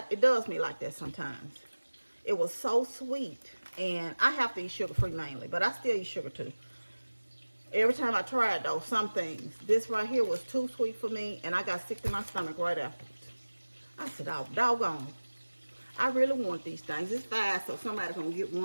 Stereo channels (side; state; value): both; inverted; correlation -1.00